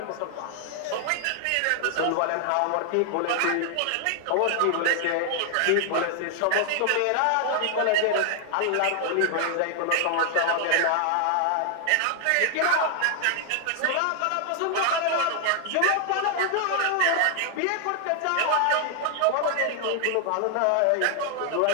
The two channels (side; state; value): both; different; correlation 0.00